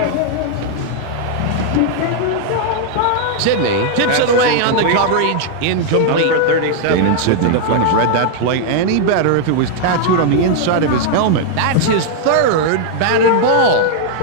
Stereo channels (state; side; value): different; both; correlation 0.00